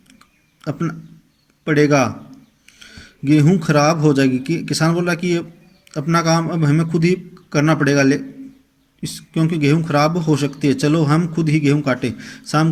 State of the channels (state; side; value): identical; both; correlation 1.00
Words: अपना पड़ेगा, गेहूं खराब हो जाएगी। किसान बोल रहा कि अपना काम अब हमें खुद ही करना पड़ेगा, क्योंकि गेहूं खराब हो सकती है, चलो हम खुद ही गेहूं काटें। शाम